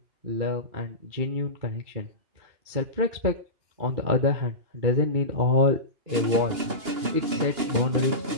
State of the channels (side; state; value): left; late; 2.8 ms